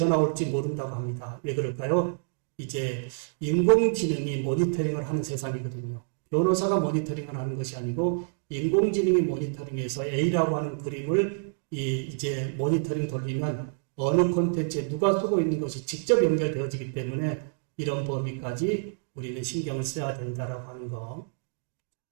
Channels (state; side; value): silent; left; digital silence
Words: 올지 모른다고 합니다. 왜 그럴까요? 이제 인공지능이 모니터링을 하는 세상이거든요. 변호사가 모니터링을 하는 것이 아니고 인공지능이 모니터링해서 A라고 하는 그림을 이제 모니터링 돌리면 어느 콘텐츠에 누가 쓰고 있는 것이 직접 연결되어지기 때문에 이런 범위까지 우리는 신경을 써야 된다라고 하는 거.